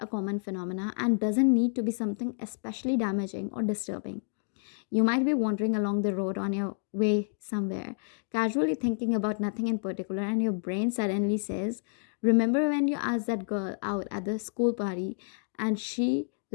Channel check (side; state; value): right; silent; digital silence